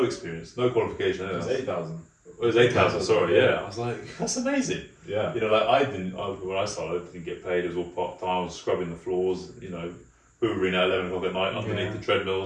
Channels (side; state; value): both; identical; correlation 1.00